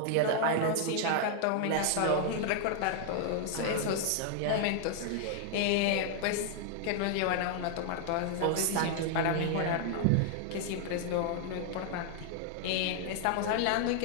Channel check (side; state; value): both; different; correlation 0.00